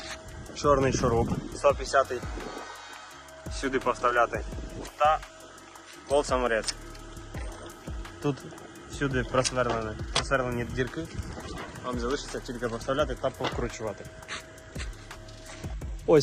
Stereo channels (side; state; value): both; identical; correlation 1.00